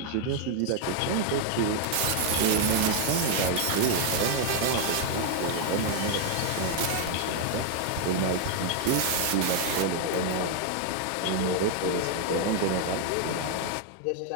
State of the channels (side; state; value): both; different; correlation 0.00